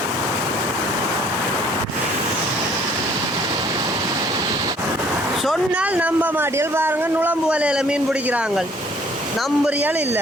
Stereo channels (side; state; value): both; normal; correlation 0.58